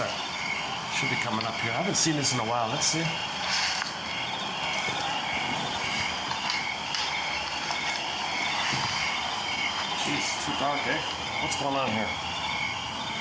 Should be coming up here. I haven't seen this in a while. Let's see. Jeez, it's too dark, eh? What's going on here?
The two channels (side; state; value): both; identical; correlation 1.00